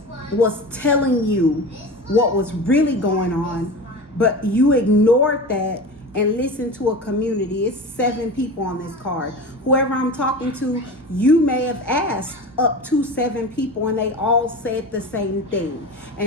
was telling you what was really going on, but you ignored that and listened to a community. It's 7 people on this card. Whoever I'm talking to, you may have asked up to 7 people and they all said the same thing.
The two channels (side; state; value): both; normal; correlation 0.30